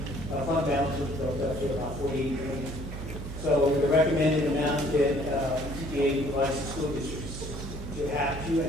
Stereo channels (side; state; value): right; noise; hum, 9 dB below the sound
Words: fund balance was built up to about $48 million. So the recommended amount that TPA provides to school districts to have